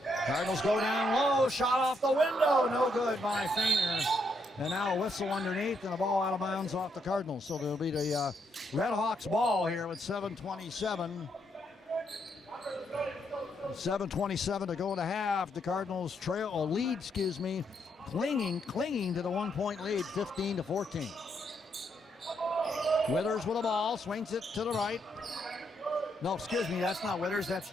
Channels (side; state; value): both; normal; correlation 0.77